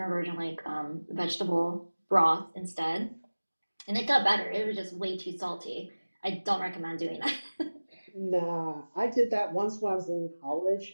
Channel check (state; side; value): inverted; both; correlation -1.00